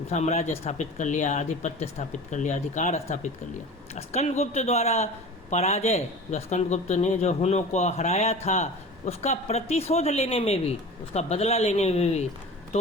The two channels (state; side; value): normal; both; correlation 0.36